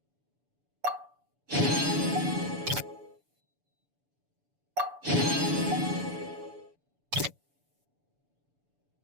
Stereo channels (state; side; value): late; left; 7.0 ms